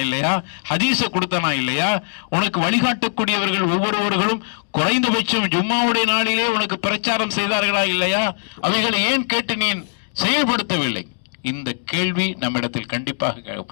இல்லையா? ஹதீஸை கொடுத்தனா இல்லையா? உனக்கு வழிகாட்டக்கூடியவர்கள் ஒவ்வொருவர்களும் குறைந்தபட்சம் ஜும்மாவுடைய நாளிலே உனக்கு பிரச்சாரம் செய்தார்களா இல்லையா? அவைகளை ஏன் கேட்டு நீ செயல்படுத்தவில்லை? இந்த கேள்வி நம்மிடத்தில் கண்டிப்பாக கேட்கும்.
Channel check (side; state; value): right; silent; digital silence